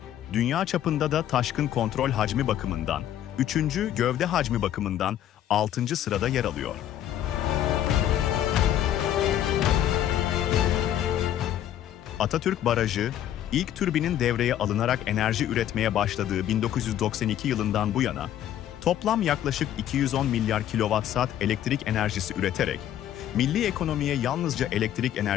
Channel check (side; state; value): right; quieter; 11.3 dB